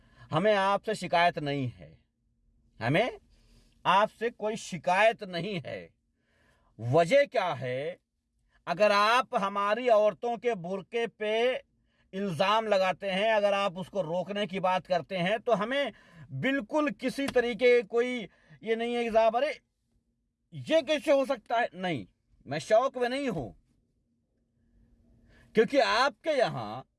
हमें आपसे शिकायत नहीं है, हमें आपसे कोई शिकायत नहीं है। वजह क्या है? अगर आप हमारी औरतों के बुर्के पे इल्ज़ाम लगाते हैं, अगर आप उसको रोकने की बात करते हैं, तो हमें बिल्कुल किसी तरीके कोई ये नहीं है कि साहब अरे ये कैसे हो सकता है, नहीं, मैं शौक में नहीं हूं। क्योंकि आपके यहां,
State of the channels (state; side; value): identical; both; correlation 1.00